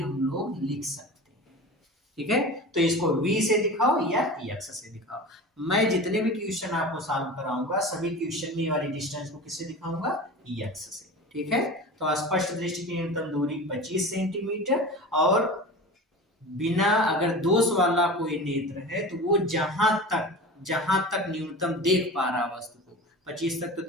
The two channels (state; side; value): normal; both; correlation 0.33